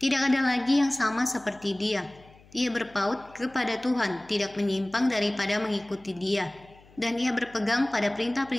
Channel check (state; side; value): noise; left; hum, 26 dB below the sound